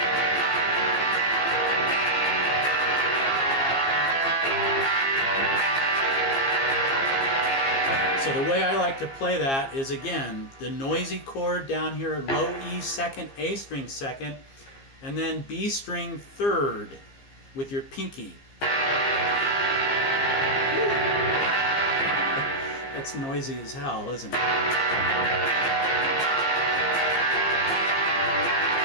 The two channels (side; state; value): right; late; 15 ms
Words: So the way I like to play that is, again, the noisy chord down here, low E second, A string second, and then B string third with your pinky. That's noisy as hell, isn't it?